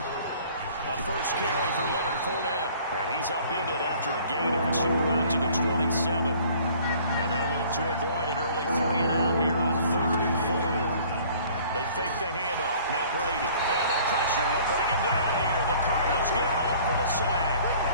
A first carry for Leonard Fournette. And he's upended after a gain of 2 out to the 27. And they'll look to avoid an early 3-and-out here on 3rd and 4. They fake the handoff. Now Brady. And the pressure will bring him down here. The Cardinals get home for the sack.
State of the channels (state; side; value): inverted; both; correlation -0.53